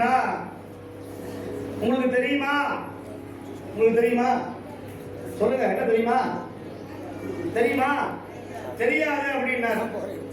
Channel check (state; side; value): identical; both; correlation 1.00